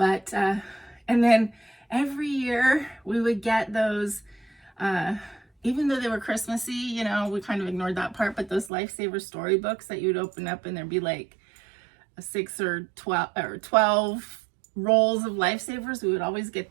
and then every year we would get those, even though they were Christmassy, we kind of ignored that part, but those Lifesaver storybooks that you would open up and there'd be like 6 or 12 rolls of Lifesavers. We would always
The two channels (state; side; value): drops out; left; at 8.7 s